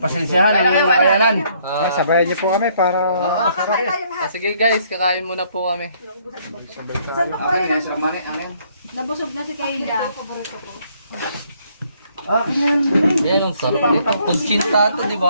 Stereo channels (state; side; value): inverted; both; correlation -0.66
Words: ang iyong kayanan. Sabayan niyo po kami para Kakain tayo lahat. Sige guys, kakain muna po kami. Saan ba Akin na, sila mani. Akin. Nabusog na si Kayla. Yan ang sarap nito. Kunchinta to, di